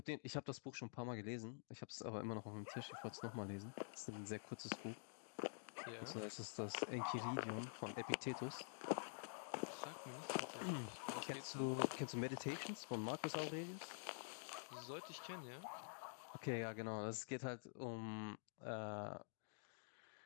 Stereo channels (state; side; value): silent; right; digital silence